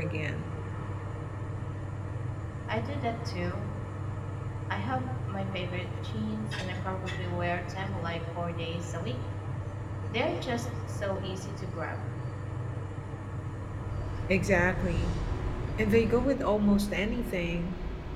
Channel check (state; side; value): identical; both; correlation 1.00